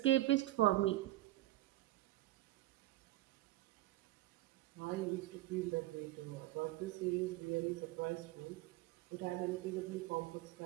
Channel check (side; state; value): left; quieter; 16.5 dB